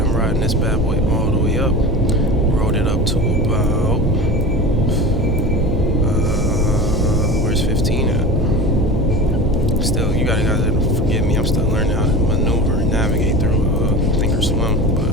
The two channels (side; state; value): both; normal; correlation 0.32